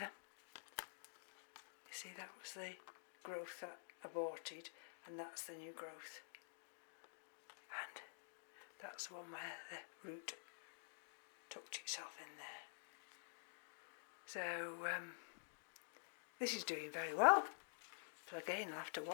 You see, that was the growth that aborted, and that's the new growth. And that's the one where the root tucked itself in there. So this is doing very well. So again, I'll have to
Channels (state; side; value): silent; right; digital silence